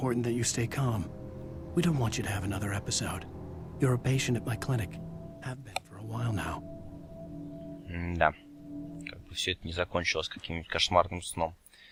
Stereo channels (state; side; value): identical; both; correlation 1.00